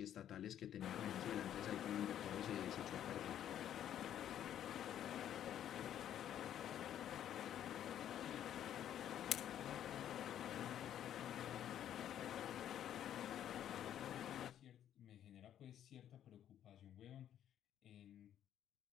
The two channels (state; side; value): quieter; right; 10.6 dB